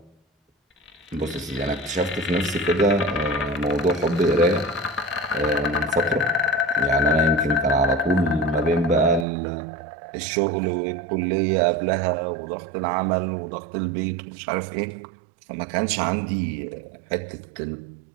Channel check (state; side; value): drops out; left; at 9.2 s